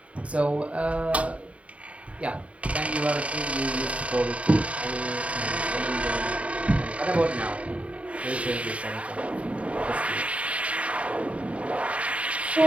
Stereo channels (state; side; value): late; left; 0.064 ms